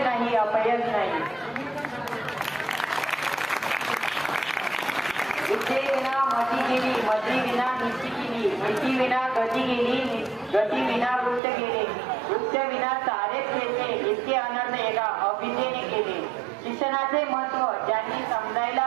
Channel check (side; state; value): left; drops out; at 11.4 s